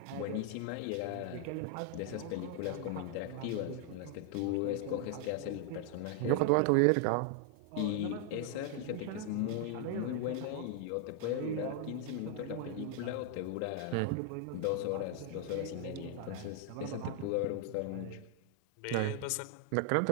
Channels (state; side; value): different; both; correlation 0.00